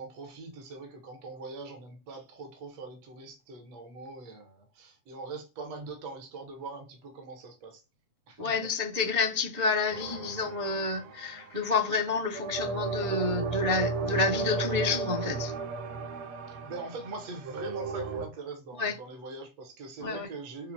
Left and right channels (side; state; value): left; late; 7.1 ms